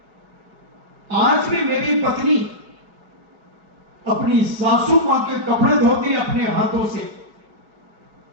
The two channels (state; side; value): late; left; 4.8 ms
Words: आज भी मेरी पत्नी अपनी सासू मां के कपड़े धोती अपने हाथों से।